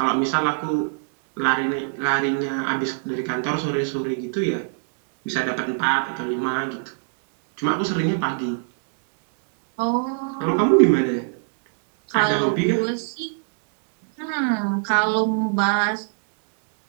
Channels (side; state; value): left; silent; digital silence